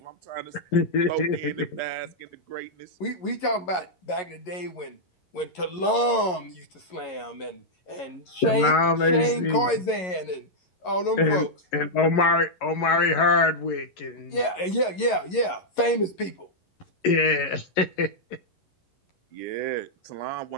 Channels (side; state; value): right; late; 11 ms